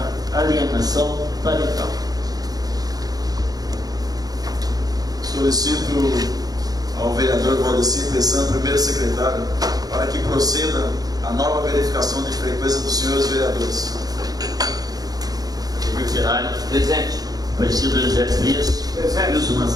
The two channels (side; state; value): left; late; 0.18 ms